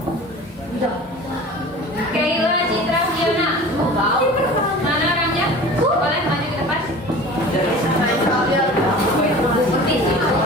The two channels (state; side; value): normal; both; correlation 0.39